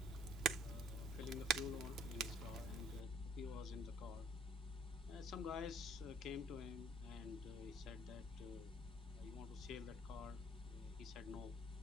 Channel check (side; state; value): both; normal; correlation 0.57